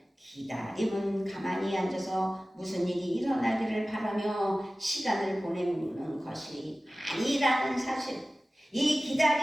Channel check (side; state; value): both; normal; correlation 0.97